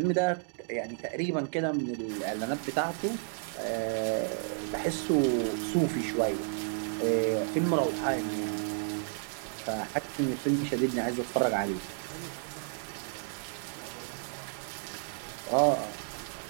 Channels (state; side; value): silent; left; digital silence